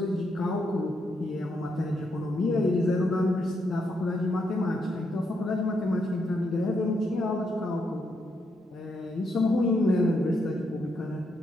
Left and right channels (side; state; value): both; normal; correlation 0.79